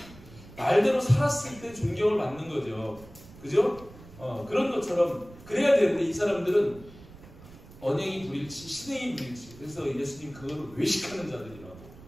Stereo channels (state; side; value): noise; right; rumble, 19 dB below the sound